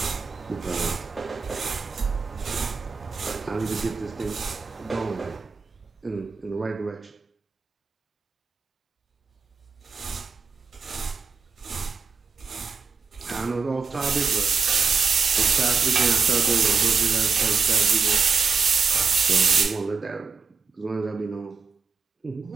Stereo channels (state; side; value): quieter; left; 5.2 dB